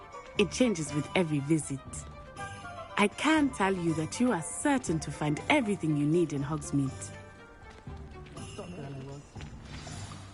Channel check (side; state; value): both; identical; correlation 1.00